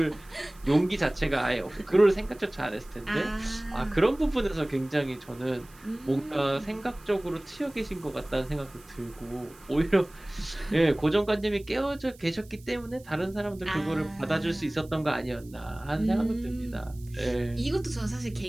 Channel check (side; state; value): right; noise; hiss, 25 dB below the sound